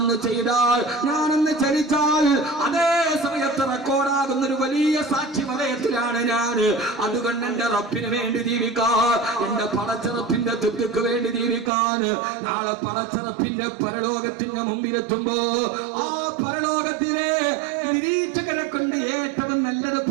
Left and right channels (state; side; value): drops out; left; at 11.7 s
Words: ചെയ്താൽ, ഞാനൊന്ന് ചലിച്ചാൽ അതേ സമയത്ത് റെക്കോർഡാകുന്ന ഒരു വലിയ സാക്ഷി വലയത്തിലാണ് ഞാൻ. അതുകൊണ്ട് എന്റെ റബ്ബിന് വേണ്ടി ജീവിക്കാൻ, എന്റെ പടച്ചറപ്പിന്റെ തൃപ്തിക്ക് വേണ്ടി ജീവിക്കാൻ നാളെ പടച്ചറപ്പിന്റെ പരലോകത്തിന്റെ മുമ്പിലെത്തുമ്പോ ആ പരലോകത്തിലെ നിരീക്ഷകരെ കൊണ്ട് ഏറ്റവും നല്ലത്